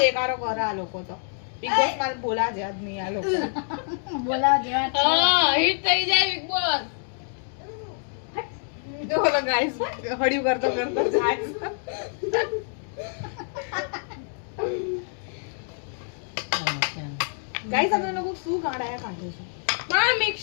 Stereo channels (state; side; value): silent; right; 61 dB below the other